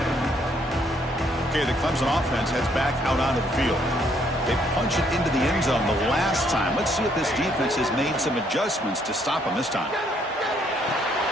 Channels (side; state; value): both; normal; correlation 0.69